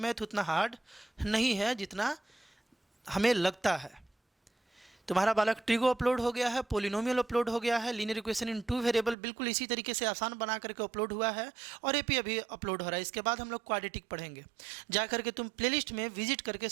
उतना हार्ड नहीं है जितना हमें लगता है। तुम्हारा बालक ट्रिगो अपलोड हो गया है, पोलिनोमियल अपलोड हो गया है, लीनियर इक्वेशन इन 2 वेरिएबल बिल्कुल इसी तरीके से आसान बना करके अपलोड हुआ है, और एपी अभी अपलोड हो रहा है। इसके बाद हम लोग क्वाड्रेटिक पढ़ेंगे, जा करके तुम प्लेलिस्ट में विजिट करके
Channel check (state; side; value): drops out; left; at 9.2 s